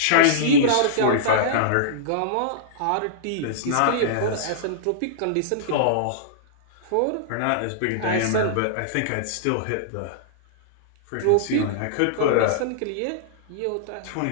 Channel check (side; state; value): both; different; correlation -0.02